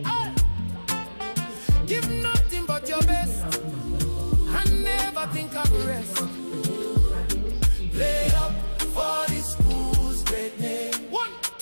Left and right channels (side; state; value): both; inverted; correlation -1.00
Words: Give nothing but your best, and never think of the rest. Play up for the school's great name. 1,